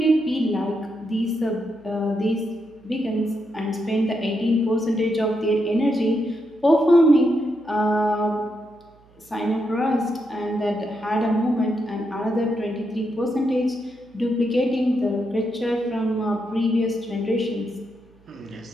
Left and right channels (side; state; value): right; noise; hum, 29 dB below the sound